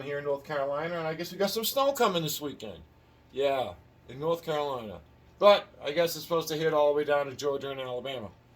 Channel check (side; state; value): both; identical; correlation 1.00